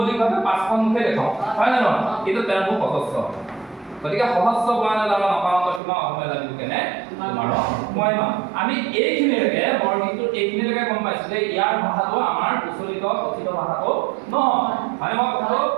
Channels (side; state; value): left; drops out; at 5.8 s